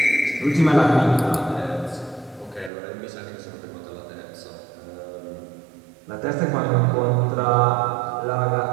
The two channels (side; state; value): left; drops out; at 2.7 s